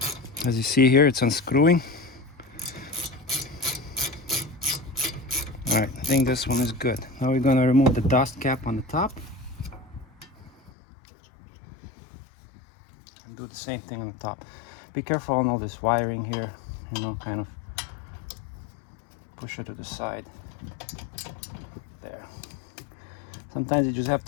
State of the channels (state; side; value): drops out; right; at 10.7 s